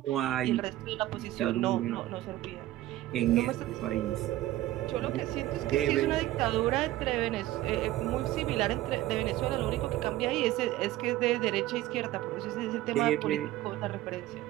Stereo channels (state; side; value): quieter; left; 15.3 dB